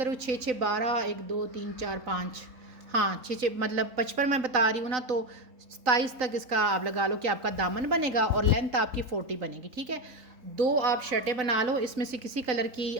6-6 12, 1 2 3 4 5, हाँ 6-6 मतलब 55 मैं बता रही हूँ ना, तो 27 तक इसका आप लगा लो कि आपका दामन बनेगा और लेंथ आपकी 40 बनेगी, ठीक है। 2 आप शर्टें बना लो, इसमें से किसी कलर की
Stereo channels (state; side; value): late; left; 3.9 ms